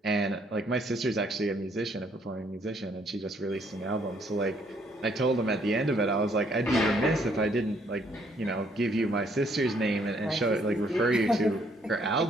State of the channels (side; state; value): both; normal; correlation 0.67